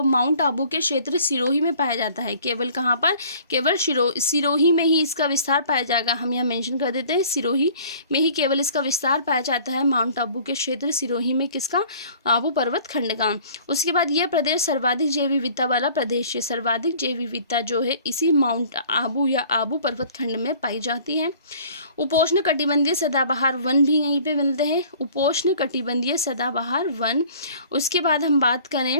माउंट आबू के क्षेत्र सिरोही में पाया जाता है। केवल कहाँ पर, केवल सिरोही में ही इसका विस्तार पाया जाएगा। हम यहाँ मेंशन कर देते हैं, सिरोही में ही केवल इसका विस्तार पाया जाता है, माउंट आबू के क्षेत्र सिरोही में, किसका, आबू पर्वत खंड का। उसके बाद यह प्रदेश सर्वाधिक जैव विविधता वाला प्रदेश है। सर्वाधिक जैव विविधता जो है इसी माउंट आबू या आबू पर्वत खंड में पाई जाती है। उपोष्ण कटिबंधीय सदाबहार वन भी यहीं पे मिलते हैं, उपोष्ण कटिबंधीय सदाबहार वन। उसके बाद हम बात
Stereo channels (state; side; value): inverted; both; correlation -0.51